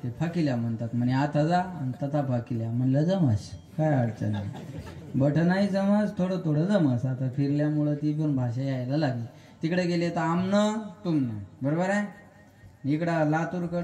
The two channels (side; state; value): both; identical; correlation 1.00